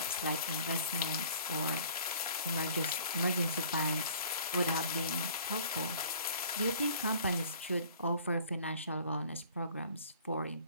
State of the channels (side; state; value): both; inverted; correlation -0.51